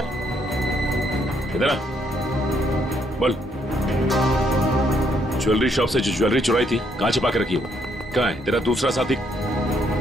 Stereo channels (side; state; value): both; normal; correlation 0.71